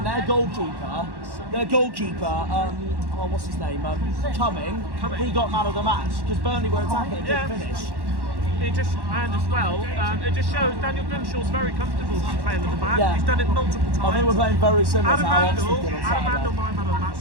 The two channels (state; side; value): late; left; 1.1 ms